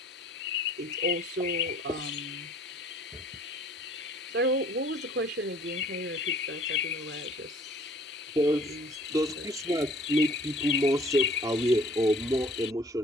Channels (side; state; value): both; normal; correlation 0.54